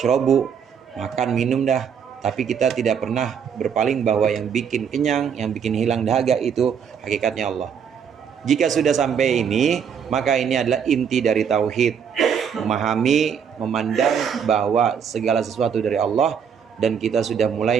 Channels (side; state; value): left; quieter; 7.4 dB